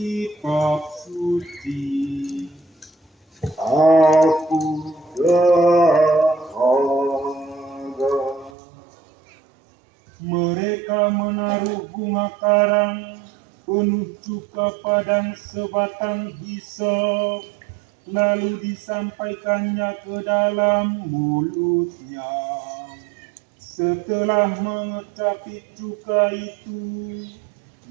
suci, Aku dahaga. mereka menaruh bunga karang penuh cuka padang sebatang hisop, lalu disampaikannya ke dalam mulutnya. Setelah mengecapi cuka itu,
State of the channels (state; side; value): drops out; left; at 8.5 s